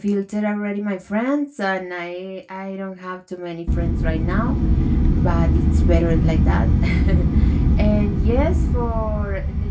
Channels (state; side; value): identical; both; correlation 1.00